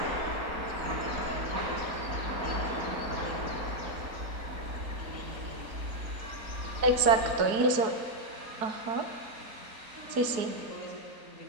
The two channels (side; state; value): left; late; 4.6 ms